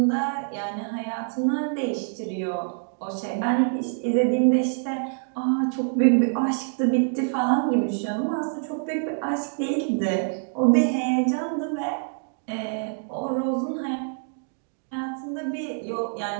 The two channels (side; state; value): left; silent; digital silence